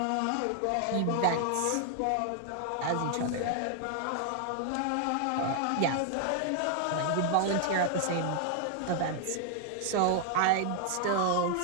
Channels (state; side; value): different; both; correlation 0.00